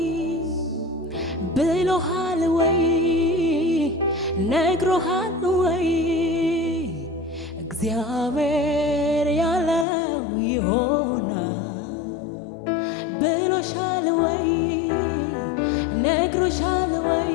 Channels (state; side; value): drops out; right; at 9.9 s